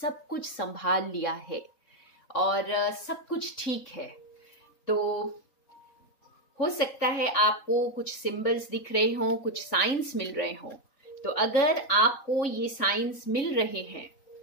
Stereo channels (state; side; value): late; right; 3.8 ms